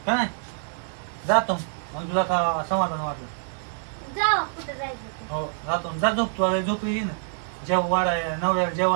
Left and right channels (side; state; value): left; silent; 57 dB below the other